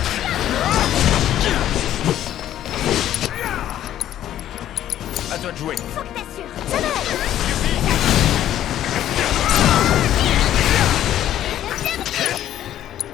À toi de jouer. Faut que t'assures. Ça va aller.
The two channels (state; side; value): quieter; right; 11.9 dB